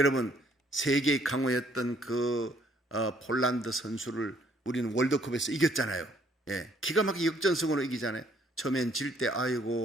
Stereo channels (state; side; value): normal; both; correlation 0.65